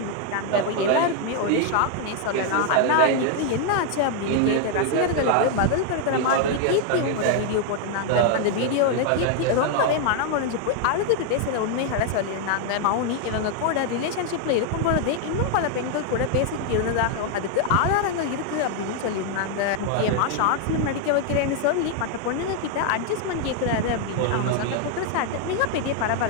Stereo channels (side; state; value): both; different; correlation 0.00